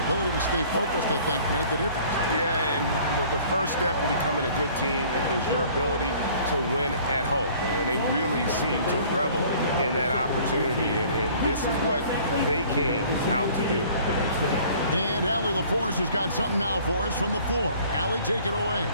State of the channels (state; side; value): inverted; both; correlation -0.52